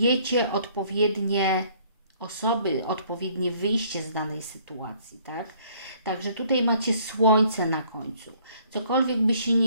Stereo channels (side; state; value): both; inverted; correlation -0.60